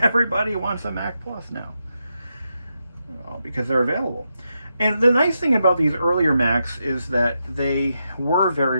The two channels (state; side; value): inverted; both; correlation -0.85